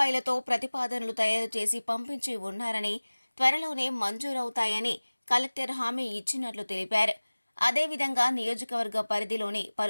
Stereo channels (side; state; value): both; inverted; correlation -1.00